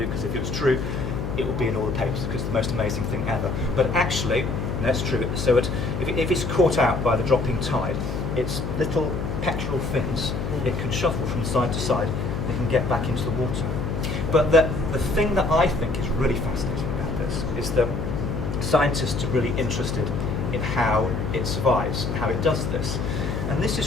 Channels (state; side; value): noise; left; hum, 3 dB below the sound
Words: because if it was true, it would be in all the papers, because it's the most amazing thing ever. But actually, that's true. So if it's caught out by the dropping tide, its little pectoral fins, it can shuffle from side to side, and it can get back into the water. But the thing that I think is really fascinating about this is that scientists are really interested in how it survives, how it does this. And this